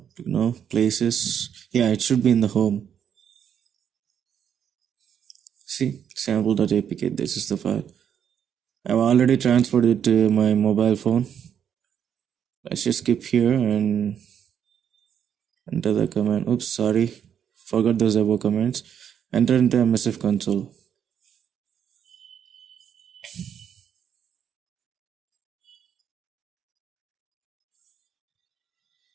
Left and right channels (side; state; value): left; quieter; 8.5 dB